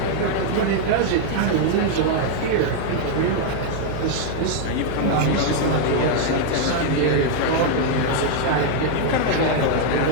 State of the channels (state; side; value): different; both; correlation 0.00